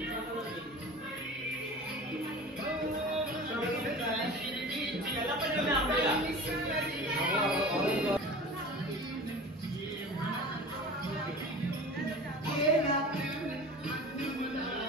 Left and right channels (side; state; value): both; normal; correlation 0.37